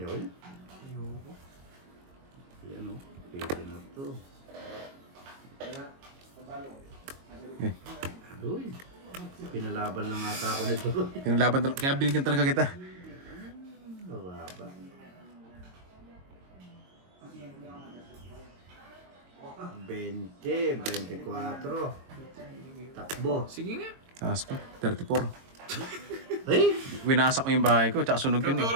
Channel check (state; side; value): late; left; 22 ms